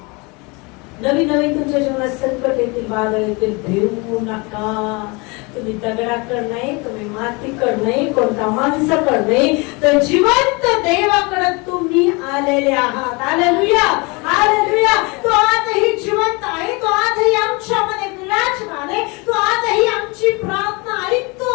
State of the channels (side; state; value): right; quieter; 27.9 dB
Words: नवीन नवीन तुमच्या जीवनात संकट येतील, वादळ येतील, भिवू नका. तुम्ही दगडाकड नाही, तुम्ही मातीकड नाही, कोणता माणसाकड नाही, तर जिवंत देवाकडे तुम्ही आलेले आहात. Hallelujah, hallelujah. तो आजही जिवंत आहे, तो आजही आमच्यामध्ये विराजमान आहे, तो आजही आमची प्रार्थना